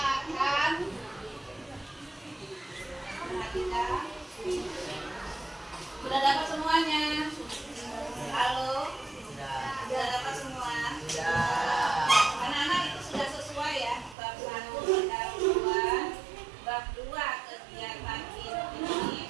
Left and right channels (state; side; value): drops out; left; at 14.2 s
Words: perhatikan Sudah dapat semuanya? Halo? Sudah dapat semua? Anak-anak itu sudah sesuai ya. Bab 1 pendahuluan, bab 2 kegiatan